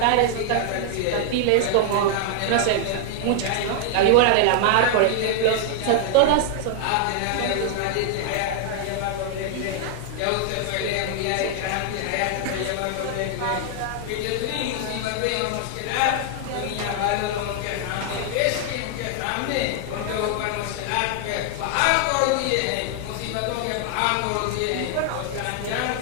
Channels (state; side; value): different; both; correlation 0.00